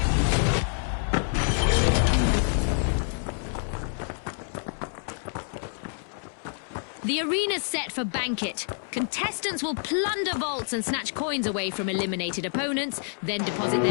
The arena's set for Banquet. Contestants will plunder vaults and snatch coins away from eliminated opponents, then deposit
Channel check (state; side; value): silent; right; 60 dB below the other